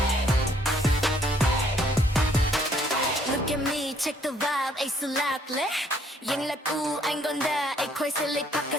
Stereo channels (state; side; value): normal; both; correlation 0.65